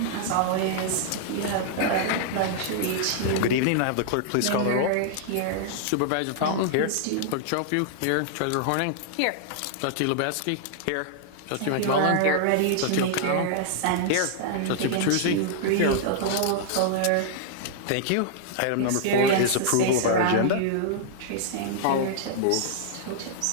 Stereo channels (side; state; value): both; different; correlation -0.01